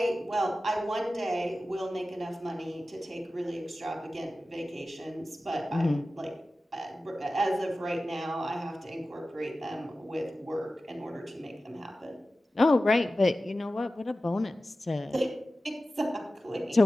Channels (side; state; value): both; normal; correlation 0.95